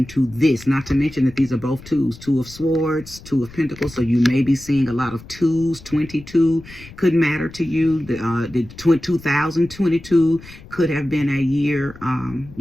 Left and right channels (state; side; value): noise; left; rumble, 19 dB below the sound